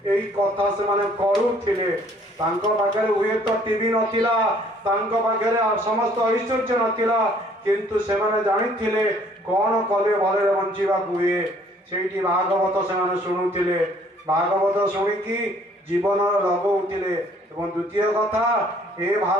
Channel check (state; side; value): normal; both; correlation 0.60